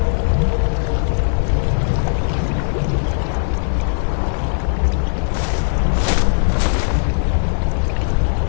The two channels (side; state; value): right; silent; digital silence